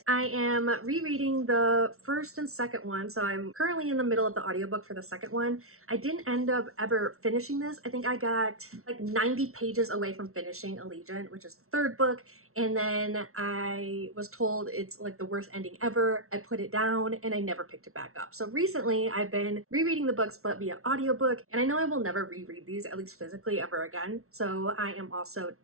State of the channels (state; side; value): late; left; 0.63 ms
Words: I am rereading the first and second one, so I'm currently in the middle of the audiobook for the second one. I didn't end up ever finishing this. I think I got like 90 pages away from finishing Allegiant, which is the third book, and then I was told it's like the worst ending ever. I put it down and I never picked it back up. So recently I've been rereading the books but via audiobook, and I know I will never reread these, at least physically, ever again. So I am also